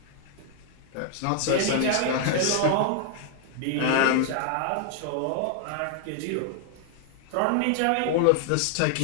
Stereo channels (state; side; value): different; both; correlation 0.00